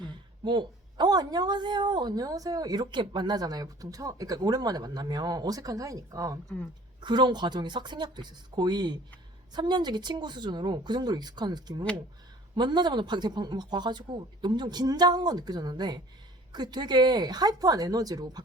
안녕하세요. 이렇게 만나잖아요. 보통 그러니까 오랜만에 만나면 어색한 사이니까. 그런 과정이 싹 생략돼 있었어. 거의 3년지기 친구 수준으로 그 정도로 익숙한 느낌으로 만나자마자 막 와가지고 엄청 긴장한 건 느껴졌는데 그 되게 하이퍼한 에너지로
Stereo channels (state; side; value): normal; both; correlation 0.49